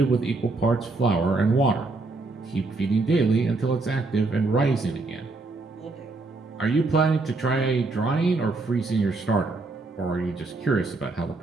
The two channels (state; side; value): quieter; left; 3.4 dB